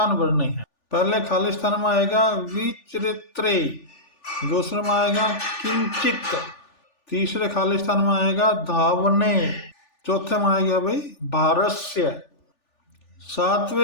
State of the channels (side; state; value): right; late; 3.4 ms